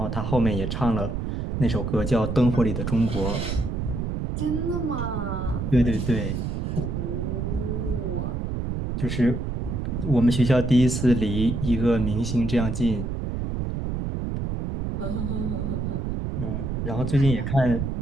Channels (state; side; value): noise; right; rumble, 2 dB below the sound